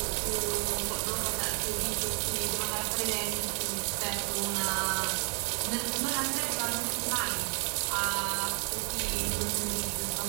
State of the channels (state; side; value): quieter; left; 37.1 dB